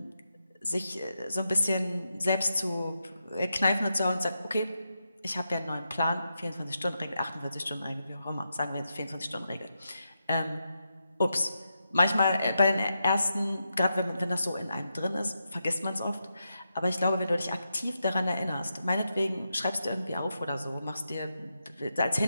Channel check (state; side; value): inverted; both; correlation -0.86